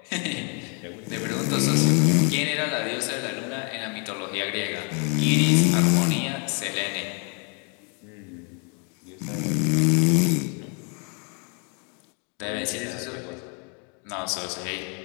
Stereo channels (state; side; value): quieter; right; 37.7 dB